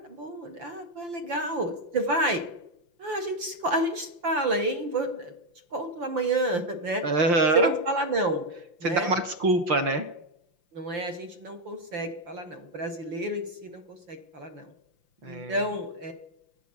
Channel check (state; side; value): late; left; 5.8 ms